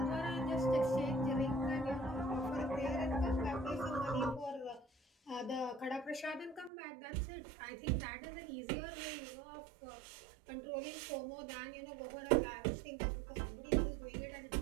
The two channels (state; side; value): drops out; left; at 6.7 s